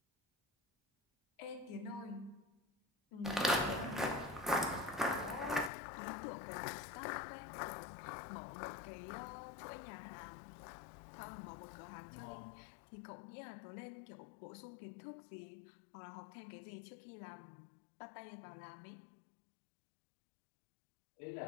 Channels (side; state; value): right; drops out; at 5.7 s